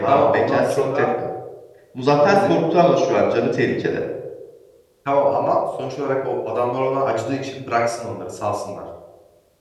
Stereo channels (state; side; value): identical; both; correlation 1.00